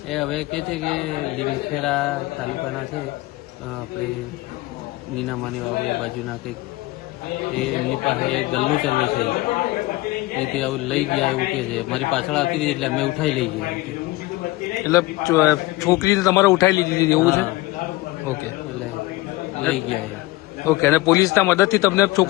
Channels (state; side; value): quieter; right; 19.9 dB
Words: એ હવે કે છે કે લીમખેડા તાલુકાના છે આપણે નીનામાની વાવ એ બાજુના કંઈક એમની પાસે એક ગલ્લો ચલવે છે એ કે આવું લઈ ગયા એવું કે છે। મારી પાછળ આવતી હતી એટલે અમે ઉઠાઈ લઈ ગયા। એટલે છોકરીને તમારે ઉઠાઈ લીધી હતી એવું છે? ઓકે, એટલે લઈ ગયા। ઓકે। અને પોલીસના મદદથી તમને